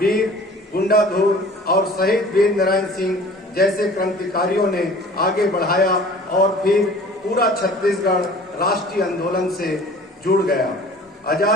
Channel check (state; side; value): normal; both; correlation 0.46